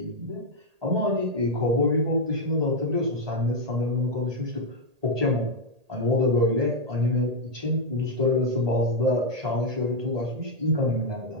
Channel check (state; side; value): late; left; 1.8 ms